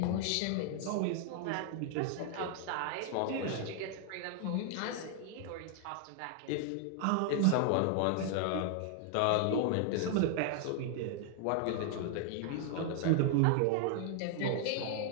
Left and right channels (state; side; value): different; both; correlation 0.00